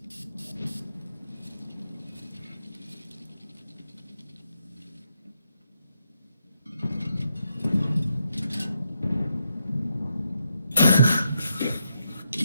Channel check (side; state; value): both; inverted; correlation -0.81